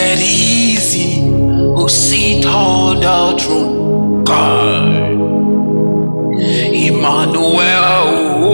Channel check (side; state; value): both; inverted; correlation -1.00